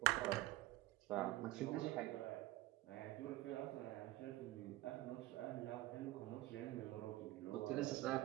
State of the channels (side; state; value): left; quieter; 17.5 dB